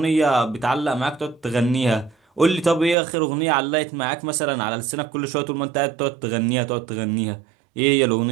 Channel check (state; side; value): drops out; left; at 3.0 s